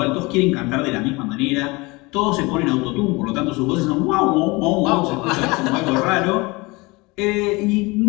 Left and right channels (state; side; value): quieter; right; 24.5 dB